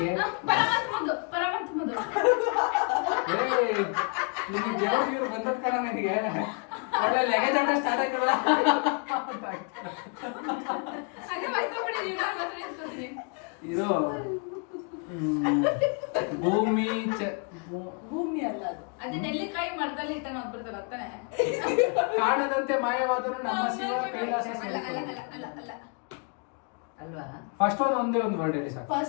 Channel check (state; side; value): quieter; right; 38.3 dB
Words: ಪರಮಾತ್ಮದು ನಿಮಗೆ ದೇವ್ರು ಬಂದದ್ ಕಣ ನನಗೆ ಒಳ್ಳೆ ಲೆಗಜಾಟ ಸ್ಟಾರ್ಟ್ ಆಯ್ತಲ್ಲ. ಅದೇ ಮರ್ತೋಗ್ಬಿಟ್ಟಿದೀನಿ, ನಾನು ಮಾತ್ರ ನೆನ್ಸ್ಕೊತೀನಿ. ಇದು ಭೂಮಿ ಭೂಮಿ ಅಲ್ಲ ಅದು ಅದೇ ನೆಲ್ಲಿಕಾಯಿ ಮರದಲ್ಲಿ ಇಟ್ಟ ನಾವು ಬರ್ತಾರ ತಾನೆ. ಕಾಣದಂತೆ ಮಾಯವಾದರೂ ನಮ್ಮ ಶಿವ ಕೈಲಾಸ ಅಲ್ಲ ಅಲ್ಲ ಅಲ್ಲ ಅಲ್ಲ ಅಲ್ಲ ಅಲ್ವಾ? ಫಸ್ಟ್ ಒಂದೇ ಒಂದು ವರ್ಡ್ ಹೇಳಿ ಸಾಕು.